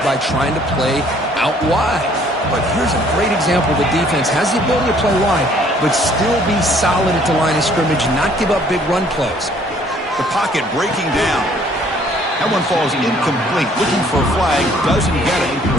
by trying to play out wide. But here's a great example. The defense has the ability to play wide, but still be solid at the line of scrimmage, not give up big run plays. The pocket breaking down. That one falls incomplete. Looking for a flag, doesn't get it.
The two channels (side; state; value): both; normal; correlation 0.60